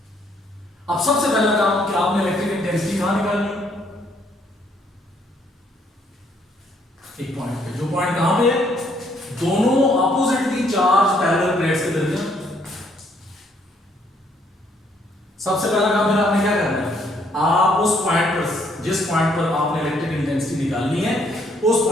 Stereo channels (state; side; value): normal; both; correlation 0.68